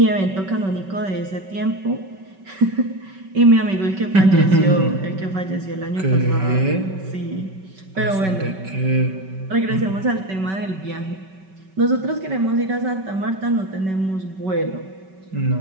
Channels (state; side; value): late; left; 5.3 ms